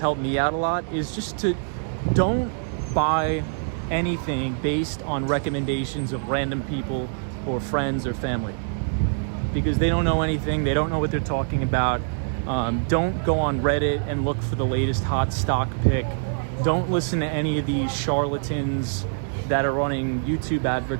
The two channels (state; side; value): silent; left; digital silence